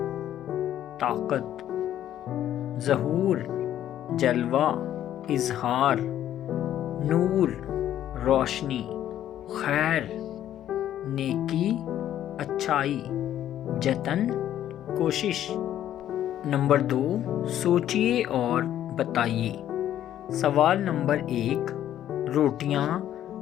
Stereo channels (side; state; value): right; quieter; 11.6 dB